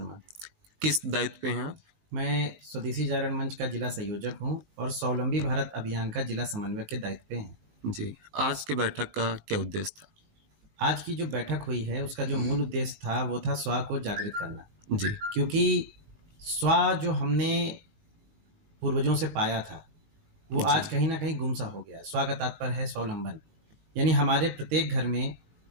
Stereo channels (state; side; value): late; left; 18 ms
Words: किस दायित्व पे हैं आप? मैं स्वदेशी जागरण मंच का जिला संयोजक हूं और स्वावलंबी भारत अभियान का जिला समन्वयक के दायित्व पे हैं। जी, आज के बैठक का क्या उद्देश्य था? आज की जो बैठक हुई है उसका जो मूल उद्देश्य था वो था स्व को जागृत करना। जी, क्योंकि स्व जो हमने पूर्वजों से पाया था वो आज कहीं ना कहीं गुमसा हो गया। स्व का तात्पर्य है स्वावलंबन, यानी हमारे प्रत्येक घर में